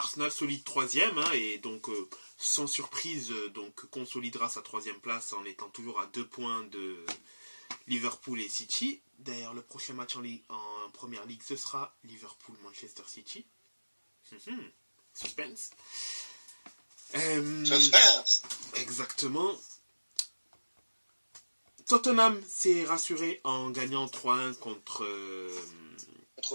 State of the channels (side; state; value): both; inverted; correlation -1.00